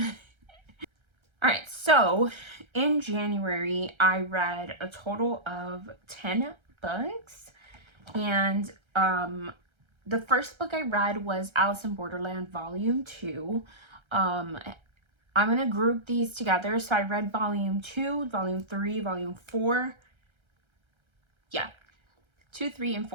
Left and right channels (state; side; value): late; left; 1.3 ms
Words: All right, so in January I read a total of 10 books, and the first book I read was Alice in Borderland Volume 2. I'm gonna group these together. So I read Volume 2, Volume 3, Volume 4. Yeah, 2, 3, and